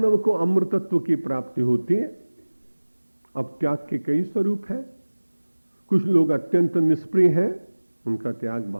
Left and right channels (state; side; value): inverted; both; correlation -1.00